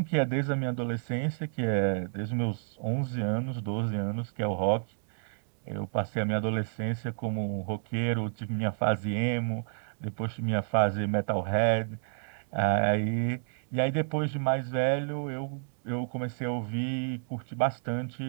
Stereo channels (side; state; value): left; silent; digital silence